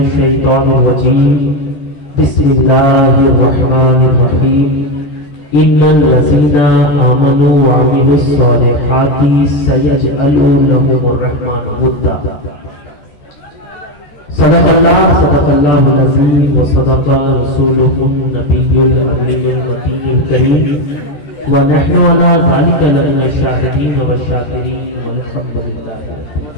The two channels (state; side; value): late; right; 13 ms